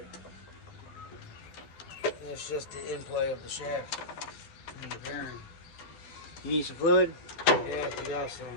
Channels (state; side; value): late; right; 12 ms